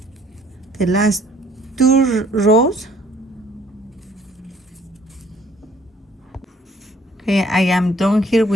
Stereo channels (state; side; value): normal; both; correlation 0.59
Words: the last 2 rows. Okay, I am done here